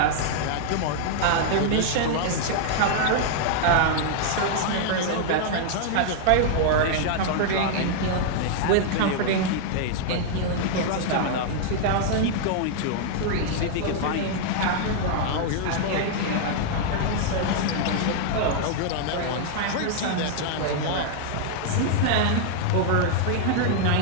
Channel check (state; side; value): different; both; correlation -0.01